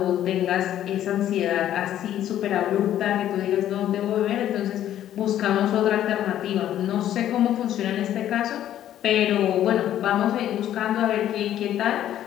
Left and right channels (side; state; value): right; quieter; 11.7 dB